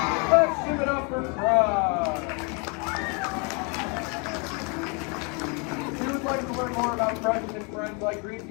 Let's give it up for Crush. If you would like to learn more about Crush and his friends like green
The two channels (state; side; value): quieter; right; 33.5 dB